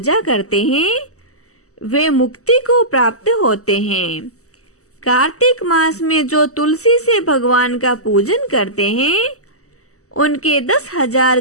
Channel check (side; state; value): right; late; 0.65 ms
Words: करते हैं, वे मुक्ति को प्राप्त होते हैं। कार्तिक मास में जो तुलसी से भगवान का पूजन करते हैं, उनके 10,000